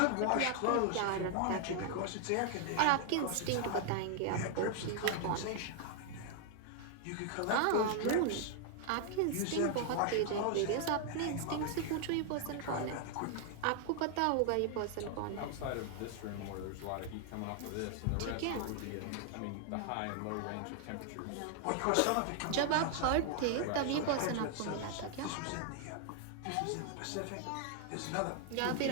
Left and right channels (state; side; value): different; both; correlation 0.00